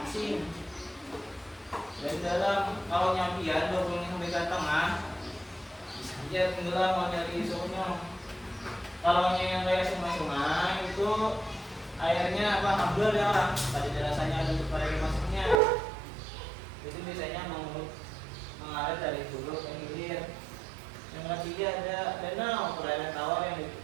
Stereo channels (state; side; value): drops out; left; at 15.6 s